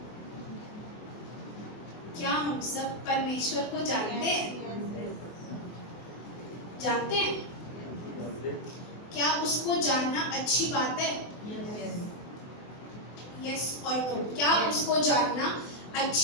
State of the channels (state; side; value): late; right; 24 ms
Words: क्या हम सब परमेश्वर को जानते हैं? जानते हैं? क्या उसको जानना अच्छी बात है? यस और नो। क्या उसको जानना